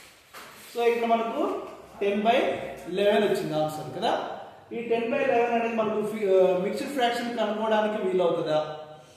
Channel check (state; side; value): identical; both; correlation 1.00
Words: సో ఇక్కడ మనకు 10/11 వచ్చింది ఆన్సర్ కదా. ఈ 10/11 అనేది మనకు మిక్స్డ్ ఫ్రాక్షన్ కనుక్కోవడానికి వీలవుతుందా?